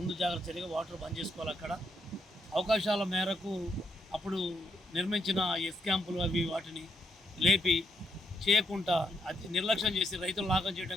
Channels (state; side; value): normal; both; correlation 0.77